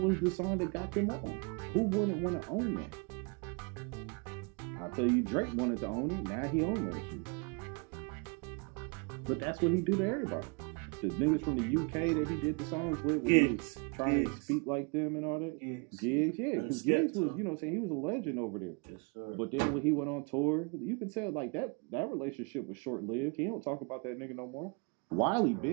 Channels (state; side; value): quieter; left; 32.9 dB